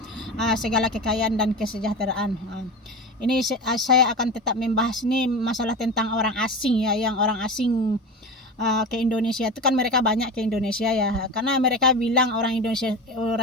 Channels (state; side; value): normal; both; correlation 0.27